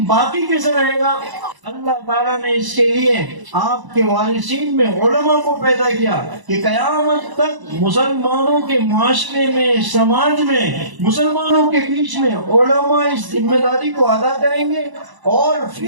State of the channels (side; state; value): left; late; 1.0 ms